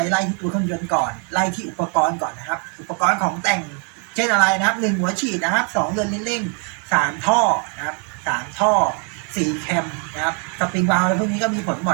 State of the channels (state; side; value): quieter; left; 38.4 dB